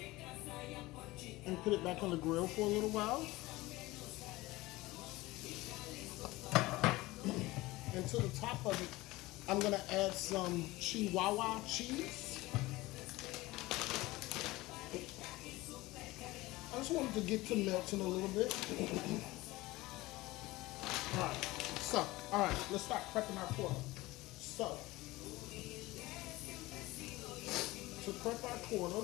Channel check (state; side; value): quieter; right; 19.7 dB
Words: and put it back on the grill for a little while. And to the top of it, I'm going to add some Chihuahua cheese. I just wanted to get to melting a little bit. Alright, let's start prepping our pork. So, to prep our